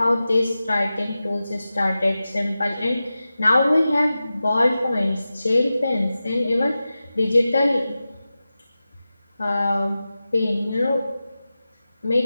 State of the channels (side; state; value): both; inverted; correlation -0.94